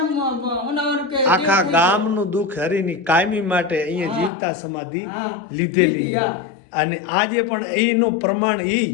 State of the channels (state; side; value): drops out; right; at 4.3 s